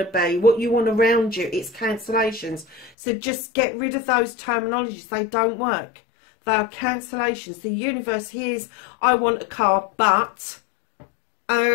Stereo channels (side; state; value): right; drops out; at 2.9 s